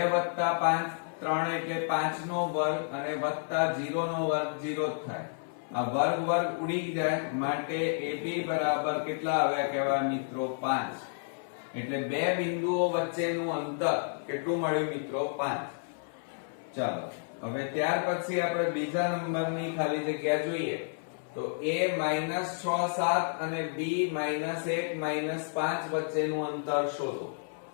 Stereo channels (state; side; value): silent; right; 57 dB below the other